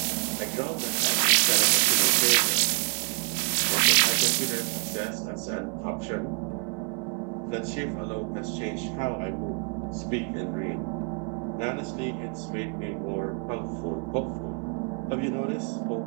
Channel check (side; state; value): left; quieter; 39.3 dB